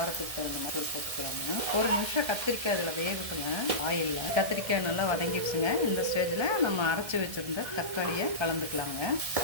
தகுந்த மாதிரி சேர்த்துக்கலாங்க. ஒரு நிமிஷம் கத்திரிக்காய் அதில் வேகட்டுங்க. ஆயிலில் கத்திரிக்காய் நல்லா வதங்கிடுச்சுங்க. இந்த ஸ்டேஜில் நம்ம அரைச்சி வச்சுருந்த தக்காளியை கலந்துக்கலாங்க.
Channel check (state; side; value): late; left; 1.7 ms